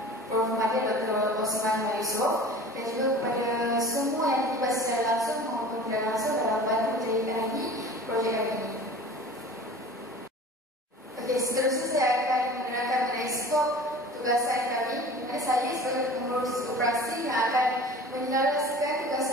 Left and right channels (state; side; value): normal; both; correlation 0.41